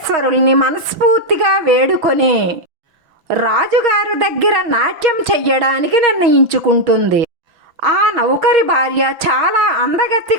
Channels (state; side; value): late; left; 6.0 ms